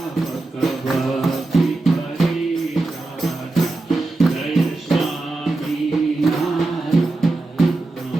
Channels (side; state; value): left; quieter; 3.1 dB